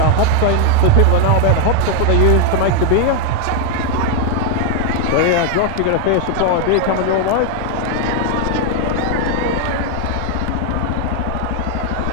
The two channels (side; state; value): both; different; correlation 0.01